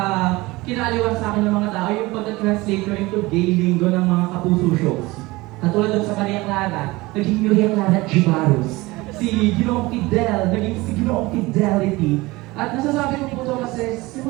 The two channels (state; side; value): quieter; left; 21.3 dB